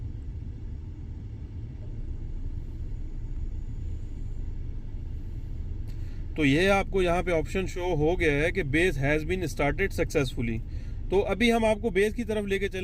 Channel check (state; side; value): identical; both; correlation 1.00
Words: तो ये आपको यहाँ पे ऑप्शन शो हो गया है कि base has been started successfully. तो अभी हम आपको बेस की तरफ लेके